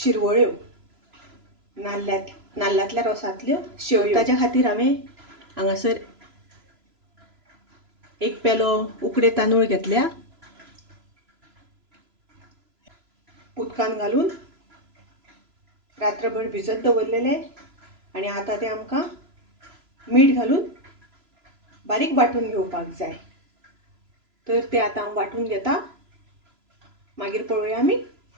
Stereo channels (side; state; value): left; late; 3.0 ms